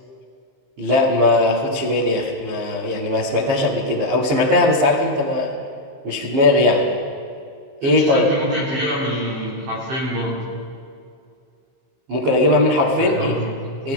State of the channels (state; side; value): late; left; 15 ms